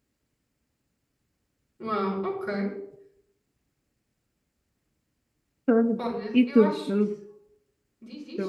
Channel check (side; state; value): both; identical; correlation 1.00